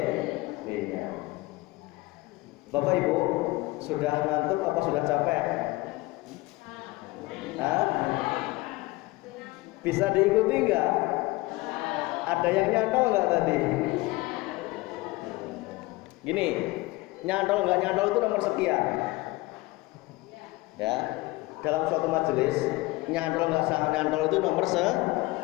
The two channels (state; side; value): quieter; right; 21.1 dB